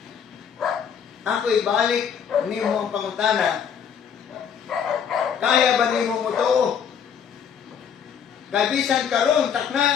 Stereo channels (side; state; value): right; quieter; 7.7 dB